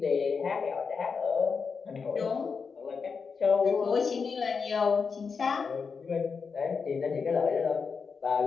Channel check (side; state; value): right; quieter; 5.4 dB